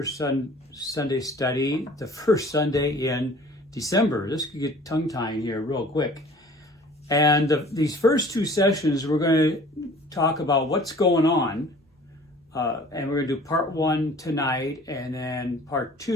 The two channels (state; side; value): normal; both; correlation 0.48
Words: Study the first Sunday in December. This could get tongue-tying here real quick. And these first two sessions, we're going to talk about what's going on. And we're going to do part one tonight, and then part